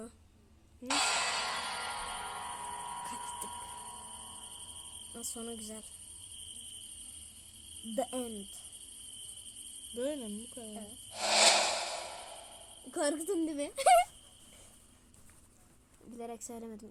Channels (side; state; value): both; identical; correlation 1.00